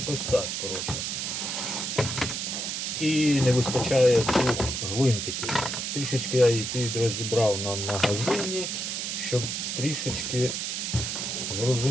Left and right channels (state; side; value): noise; right; hiss, 3 dB below the sound